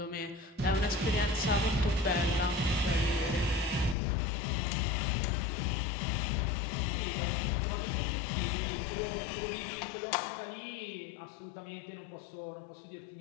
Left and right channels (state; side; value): drops out; right; at 4.0 s